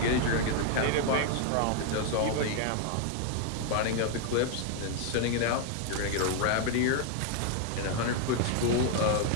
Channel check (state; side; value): different; both; correlation 0.00